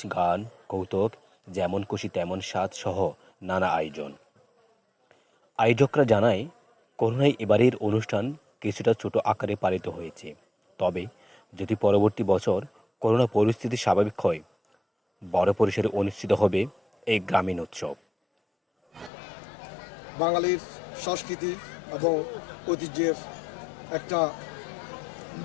গান, কৌতুক, যেমন খুশি তেমন স্বাদ সহ নানা আয়োজন। আয়োজকরা জানায়, করোনায় এবারের অনুষ্ঠান কিছুটা ছোট আকারে পালিত হয়েছে, তবে যদি পরবর্তী বছর করোনা পরিস্থিতি স্বাভাবিক হয়, বড় পরিসরে অনুষ্ঠিত হবে এই গ্রামীণ উৎসব। বাঙালির সংস্কৃতি এবং ঐতিহ্যের একটা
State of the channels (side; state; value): right; drops out; at 19.1 s